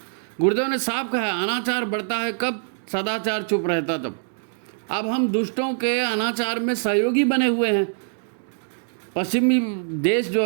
गुरुदेव ने साफ कहा है, अनाचार बढ़ता है कब? सदाचार चुप रहता तब। अब हम दुष्टों के अनाचार में सहयोगी बने हुए हैं। पश्चिमी देश जो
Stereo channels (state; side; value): silent; left; digital silence